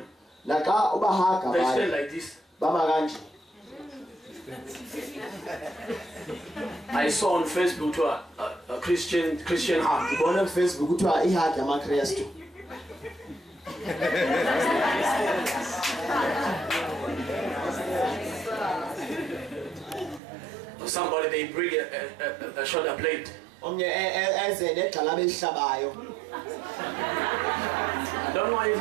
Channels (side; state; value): left; drops out; at 20.2 s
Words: they stand like this. Baba kanje. I saw on Facebook to a Christian heart. Ngibona ku Facebook kuthiwa iheart yamaKristu. Somebody they bring a shoulder blade. Omnye eze negxala behlabayo. I don't know if